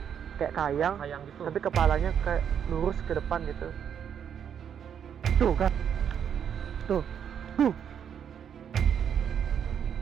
kayak kayang, Kayang gitu. tapi kepalanya kayak lurus ke depan gitu. Tuh kan, tuh.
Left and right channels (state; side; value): quieter; left; 8.3 dB